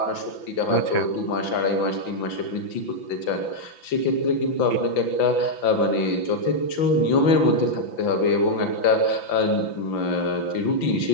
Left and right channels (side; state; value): right; late; 5.9 ms